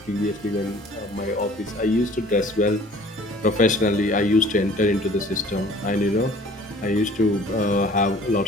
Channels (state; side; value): normal; both; correlation 0.50